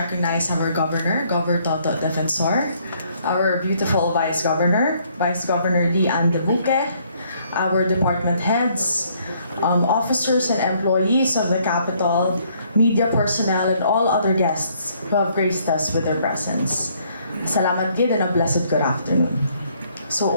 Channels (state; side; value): inverted; both; correlation -0.66